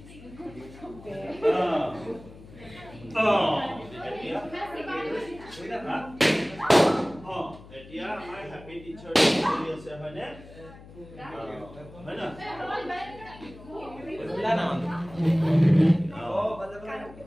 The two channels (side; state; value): left; noise; hum, 19 dB below the sound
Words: এতিয়া আমাৰ happy teacher day চলি আছে হয়নে হয় না বুলা না